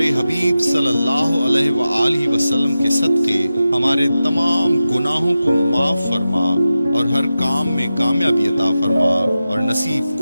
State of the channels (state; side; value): inverted; both; correlation -0.93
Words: हबीब सल्लल्लाहु अलैहि व आलिहि वसल्लम के सदक़े हमारे तमाम गुनाहों को माफ़ फरमा और हर काम में कामयाबी अता फरमा और नसीब